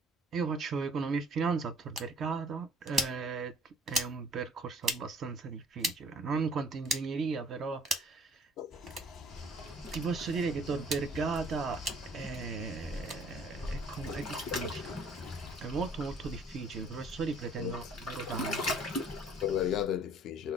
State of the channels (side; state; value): both; normal; correlation 0.56